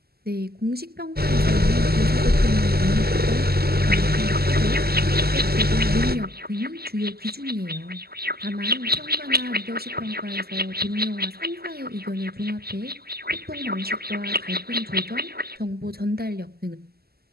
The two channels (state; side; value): late; left; 0.46 ms